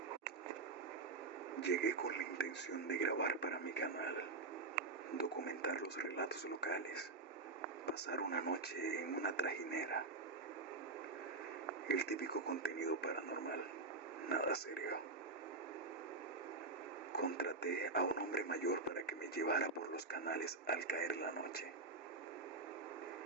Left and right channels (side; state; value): left; quieter; 3.8 dB